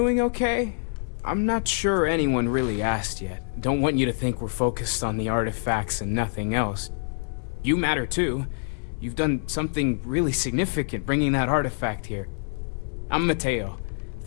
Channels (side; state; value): right; silent; 61 dB below the other